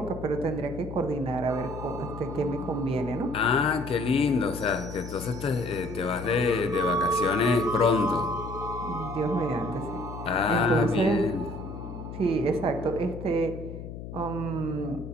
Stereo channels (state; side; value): noise; left; hum, 10 dB below the sound